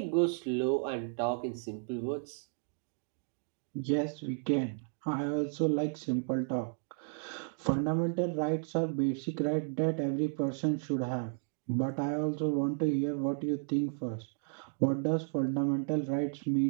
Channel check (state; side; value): silent; left; digital silence